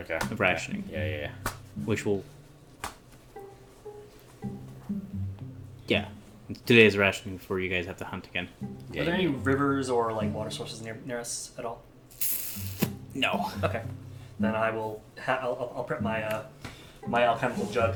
Of rationing. Yeah. which will. Yeah. 2 days of rationing before you guys have to hunt again. Yeah, Are there any yeah. rivers or like water sources near us at all? No. Okay. Then I will. I'll prep my my alchemical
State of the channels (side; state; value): both; identical; correlation 1.00